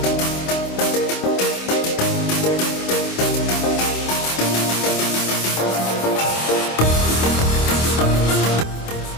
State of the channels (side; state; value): right; late; 26 ms